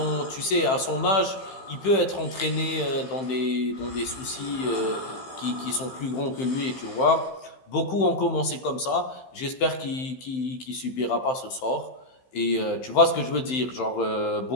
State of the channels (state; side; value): late; right; 15 ms